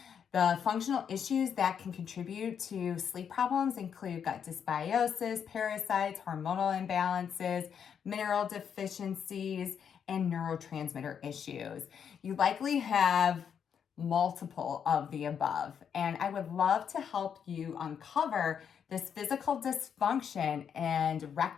The functional issues that can contribute to sleep problems include gut dysbiosis, parasites, hormonal imbalances, mineral deficiencies, and neurotransmitter issues. You likely have multiple of the above, and I would love to help you uncover this physical dysfunction and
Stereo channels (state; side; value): quieter; right; 7.7 dB